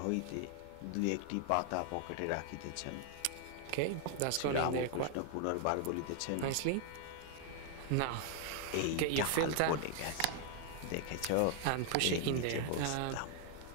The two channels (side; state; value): both; different; correlation 0.00